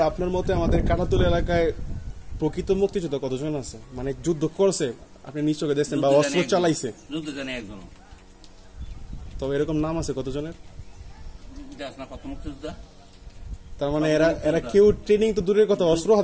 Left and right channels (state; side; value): identical; both; correlation 1.00